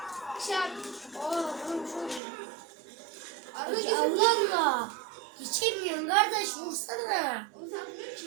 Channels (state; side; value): drops out; left; at 2.2 s